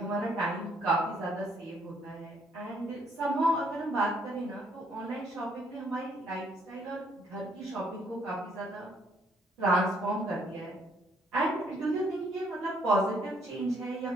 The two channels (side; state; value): both; normal; correlation 0.67